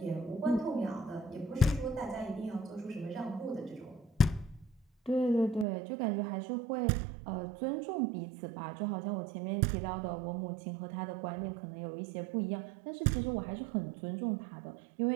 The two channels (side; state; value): left; drops out; at 5.7 s